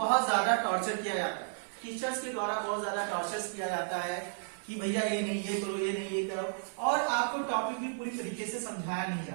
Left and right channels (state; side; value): silent; left; 56 dB below the other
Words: ज्यादा टॉर्चर किया जाता है, टीचर्स के द्वारा बहुत ज्यादा टॉर्चर किया जाता है कि भैया ये नहीं ये करो, ये नहीं ये करो, और आपको टॉपिक भी पूरी तरीके से समझाया नहीं